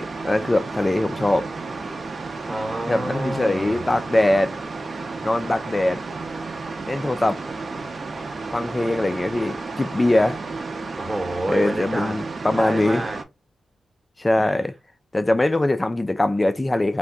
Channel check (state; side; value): normal; both; correlation 0.96